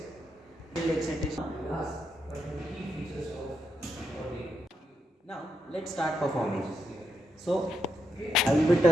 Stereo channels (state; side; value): normal; both; correlation 0.82